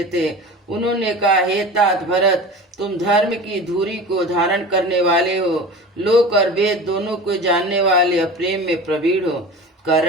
थे। उन्होंने कहा, हे तात भरत, तुम धर्म की धुरी को धारण करने वाले हो, लोक और वेद दोनों को जानने वाले और प्रेम में प्रवीण हो।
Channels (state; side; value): normal; both; correlation 0.34